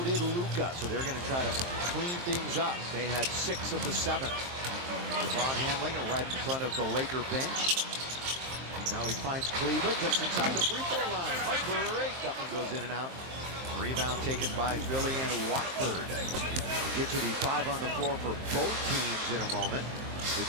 did Luka. So they're going to try to clean things up. They had 6 of the 7. LeBron handling it right in front of the Laker bench. Now he finds Kleber just inside the free throw line. Heartbreak. That one goes in and out. Rebound taken by Philly and Watford. We'll get to the 5 on the floor for both teams in a moment.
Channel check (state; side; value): late; left; 23 ms